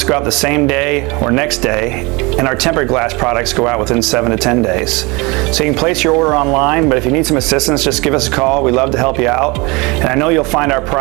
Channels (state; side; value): quieter; left; 26.1 dB